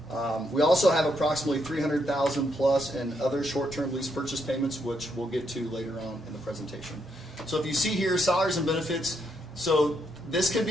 We also have approximately $300,000 plus in other short-term lease purchase payments, which we'll get to later on in the presentation. So if you see here, salaries and benefits. So this can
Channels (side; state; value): both; normal; correlation 0.77